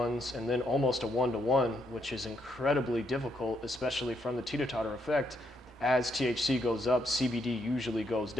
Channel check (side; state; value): both; normal; correlation 0.76